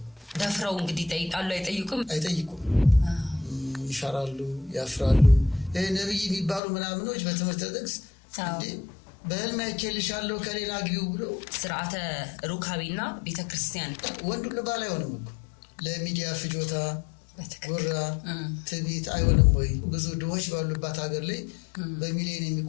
ደፍረው እንግዲህ ይጠይቃሉ አይጠይቁም። ይፈራሉ፣ ያፍራሉ። ነብይ የሚባሉ ምናምኖች በትምህርት ጥቅስ በህልም አይቼልሻለሁ ከሌላ ግቢው ብሎ ስርዓተ ሩካቤና ቤተክርስቲያን ወንድ ሁሉ ባል አይሆንም እኮ ለሚዲያ ፍጆታ ጉራ ትዕቢት አይሆንም ወይ? ብዙ ድሆች ባሉባት ሀገር ላይ በሚሊዮን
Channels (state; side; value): drops out; right; at 6.6 s